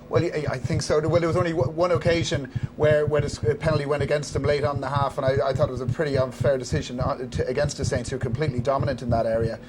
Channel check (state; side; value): identical; both; correlation 1.00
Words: Well, I think so. Well, there was only one occasion where the penalty went against them late on in the half, and I thought it was a pretty unfair decision against the Saints, who were completely dominant in that area.